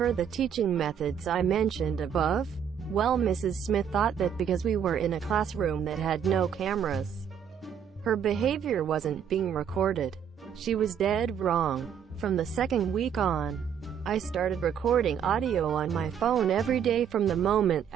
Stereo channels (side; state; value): left; quieter; 8.2 dB